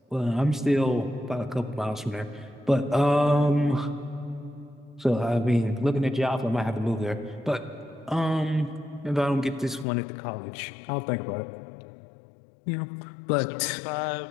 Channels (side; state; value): right; drops out; at 9.9 s